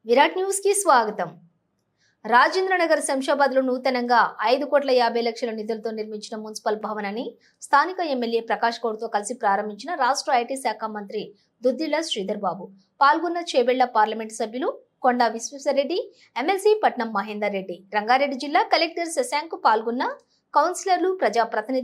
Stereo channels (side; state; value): both; identical; correlation 1.00